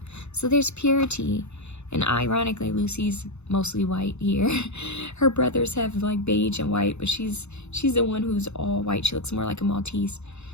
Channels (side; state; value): right; late; 0.81 ms